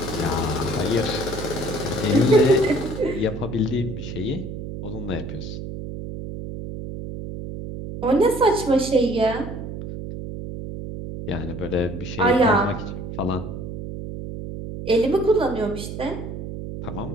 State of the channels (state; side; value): noise; right; hum, 8 dB below the sound